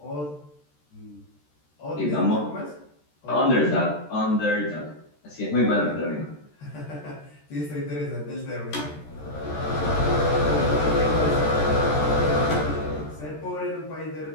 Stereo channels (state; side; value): late; right; 13 ms